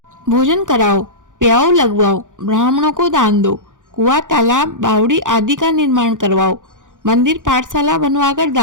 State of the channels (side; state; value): left; late; 0.87 ms